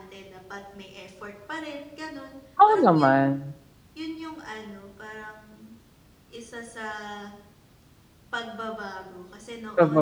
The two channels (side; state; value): both; identical; correlation 1.00